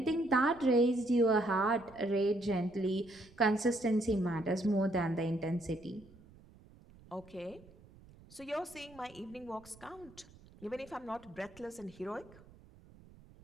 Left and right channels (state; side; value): noise; right; rumble, 23 dB below the sound